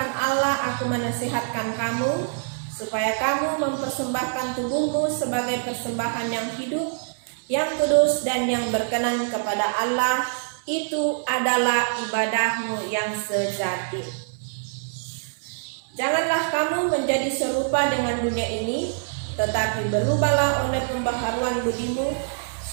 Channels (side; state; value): left; silent; 62 dB below the other